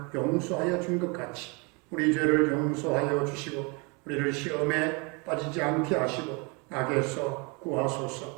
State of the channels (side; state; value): left; quieter; 31.1 dB